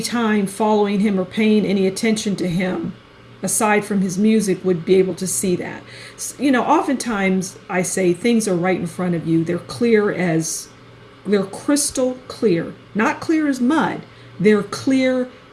time following him or paying any attention to him aside from his music would be able to see that. Oftentimes I say things are right in front of you. They're crystal clear. Not clear as mud. They're clear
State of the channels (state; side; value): identical; both; correlation 1.00